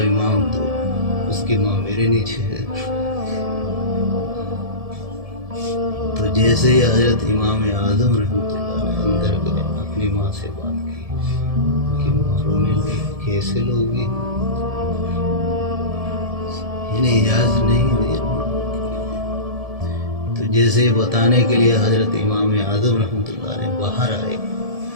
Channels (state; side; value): late; left; 1.7 ms